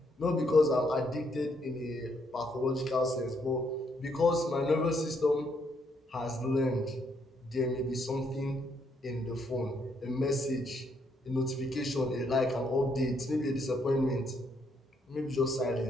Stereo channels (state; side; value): normal; both; correlation 0.73